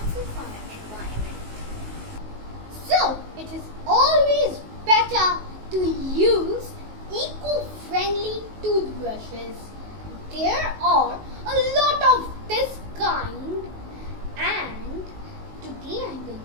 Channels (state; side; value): late; left; 19 ms